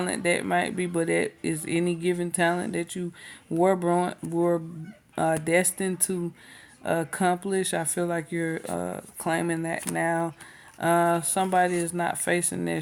that might be, but it is any given talent that you were destined to accomplish. I feel like you're claiming that now. Somebody is not facing their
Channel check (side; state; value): both; identical; correlation 1.00